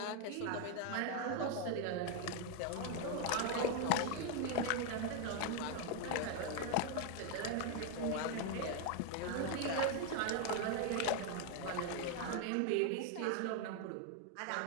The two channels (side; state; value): both; different; correlation 0.01